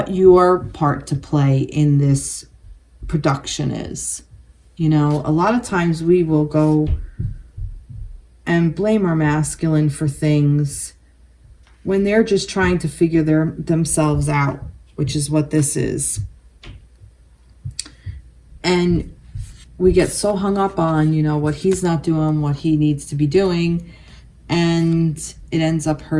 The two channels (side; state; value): both; identical; correlation 1.00